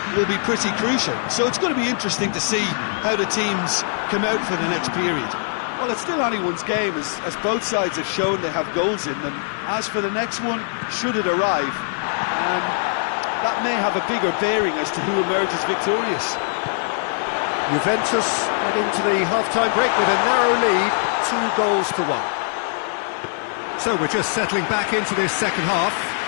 will be pretty crucial. So it's going to be interesting to see how the teams come out for the next period. Well, it's still anyone's game, as both sides have shown they have goals in them. As for the next one, should it arrive, that may have a bigger bearing as to who emerges victorious. Juventus head into the half-time break with a narrow lead, 2-1. So we're just settling back into this second half.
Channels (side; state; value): right; silent; digital silence